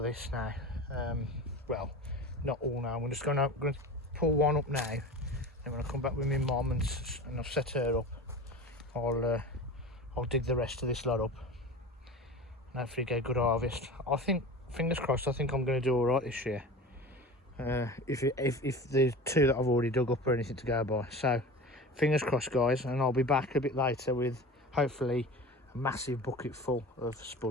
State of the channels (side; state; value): both; normal; correlation 0.34